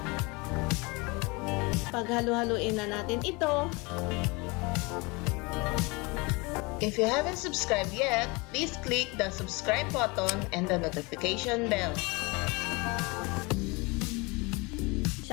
Paghalo-haluin na natin ito. If you haven't subscribed yet, please click the subscribe button and the notification bell.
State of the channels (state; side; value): quieter; right; 26.8 dB